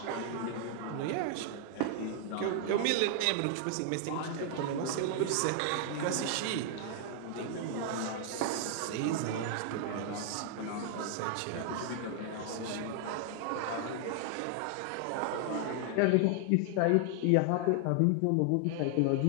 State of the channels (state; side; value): different; both; correlation 0.00